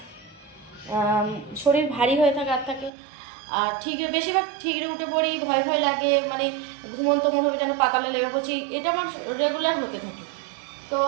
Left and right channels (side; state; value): left; drops out; at 2.9 s